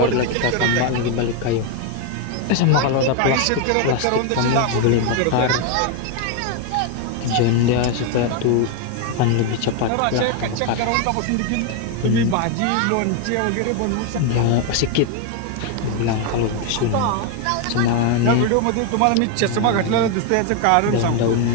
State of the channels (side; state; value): both; different; correlation 0.01